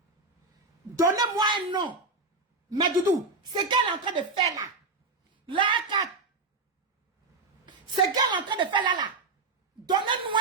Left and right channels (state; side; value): quieter; left; 3.7 dB